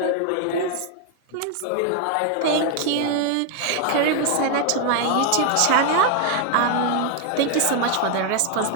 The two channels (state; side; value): different; both; correlation 0.00